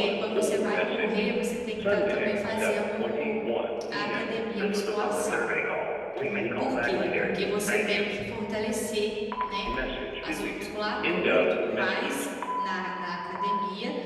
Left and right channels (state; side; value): identical; both; correlation 1.00